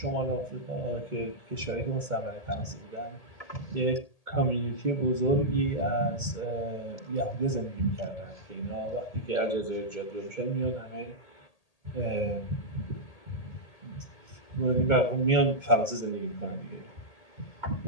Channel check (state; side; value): late; right; 1.8 ms